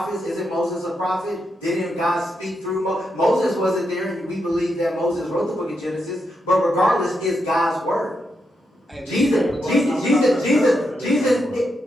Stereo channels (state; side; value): normal; both; correlation 0.83